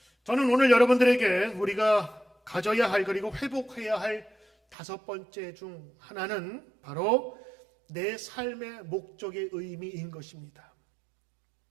저는 오늘 여러분들에게 우리가 가져야 할 그리고 회복해야 할 5번째 중 하나는 바로 내 삶의 목적의 의미인 것입니다.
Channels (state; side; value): drops out; left; at 4.8 s